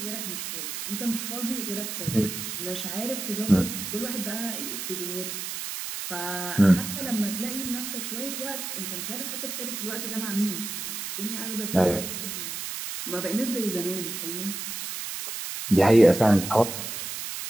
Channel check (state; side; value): noise; right; hiss, 5 dB below the sound